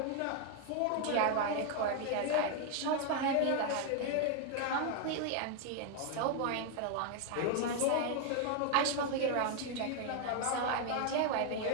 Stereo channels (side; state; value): both; different; correlation 0.01